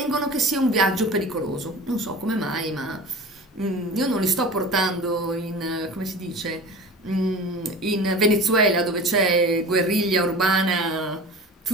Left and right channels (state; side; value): normal; both; correlation 0.36